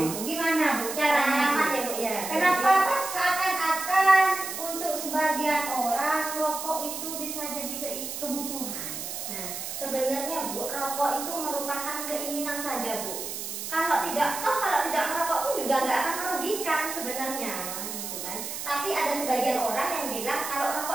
Gitu. Gimana Bu caranya? Pengalaman Bu? ya, Bu ya. Kenapa pas seakan-akan untuk sebagian orang rokok itu bisa jadi kebutuhan? Nah, sebenarnya Bu, rokok itu merupakan keinginan saja, Bu. Kalau tidak merokok pun juga nggak akan merugikan sebenarnya, gitu kan. Tapi ada sebagian orang yang bilang kalau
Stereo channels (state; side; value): noise; right; hiss, 6 dB below the sound